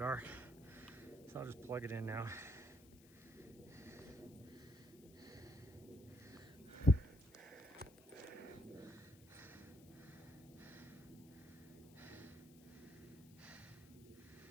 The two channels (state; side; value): noise; left; hiss, 23 dB below the sound